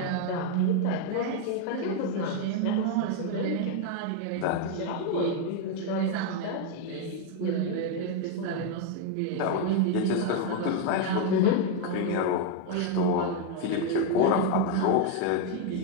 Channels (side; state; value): both; different; correlation 0.01